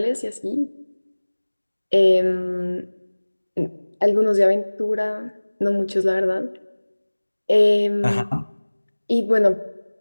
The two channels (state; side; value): inverted; both; correlation -1.00